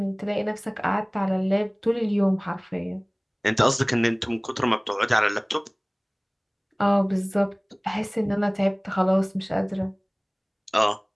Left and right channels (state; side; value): identical; both; correlation 1.00